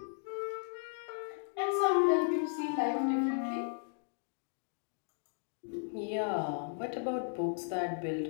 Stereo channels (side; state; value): right; silent; digital silence